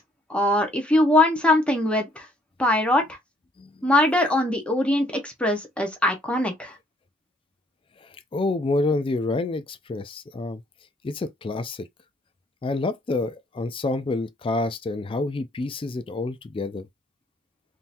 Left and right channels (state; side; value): normal; both; correlation 0.64